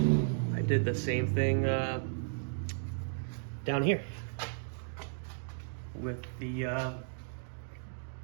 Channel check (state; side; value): silent; left; digital silence